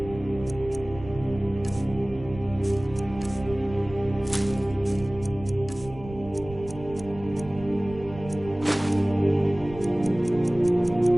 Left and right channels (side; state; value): right; noise; rumble, 15 dB below the sound